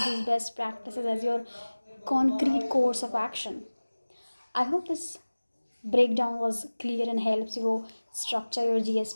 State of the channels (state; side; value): inverted; both; correlation -1.00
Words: these best practices as your concrete course of action. I hope this breakdown was clear and helps you structure your GS